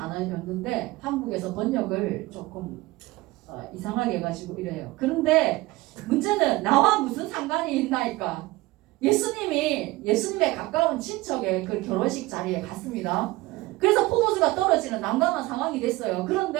한국에서 번역을 조금 이상하게 해가지고 이래요. 그런데 문제는 나와 무슨 상관이 있나이까? 예수님의 가까운 친척의 그 결혼식 자리에 갔습니다. 그래서 포도주가 떨어지는 난감한 상황이 됐어요.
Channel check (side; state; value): left; quieter; 20.1 dB